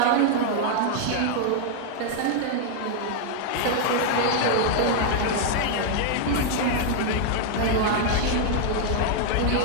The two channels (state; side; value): different; both; correlation 0.00